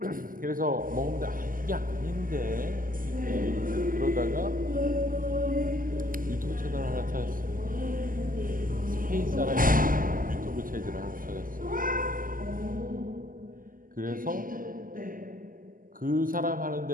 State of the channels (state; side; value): late; left; 0.41 ms